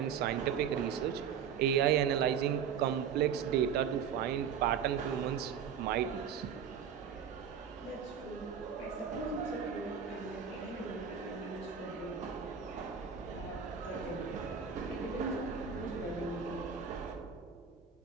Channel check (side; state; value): left; quieter; 7.5 dB